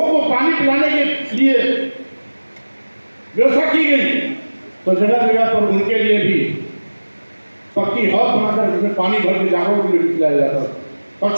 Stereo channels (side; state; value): both; inverted; correlation -1.00